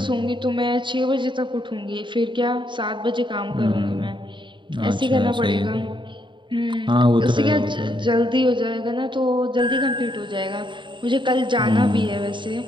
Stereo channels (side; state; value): left; late; 0.23 ms